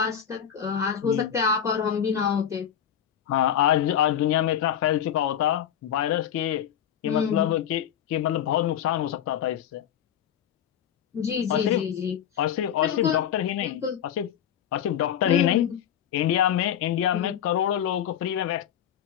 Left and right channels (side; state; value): right; quieter; 9.4 dB